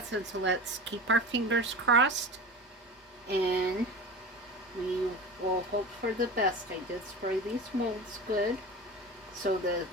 so let's keep our fingers crossed. And we will hope for the best. I did spray these molds good. So the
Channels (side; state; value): both; normal; correlation 0.32